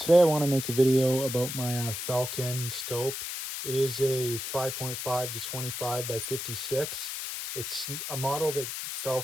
I want to make a video about my Falcon scope. It is a 5.5 to 25 by 56. It's a model that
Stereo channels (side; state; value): left; noise; hiss, 5 dB below the sound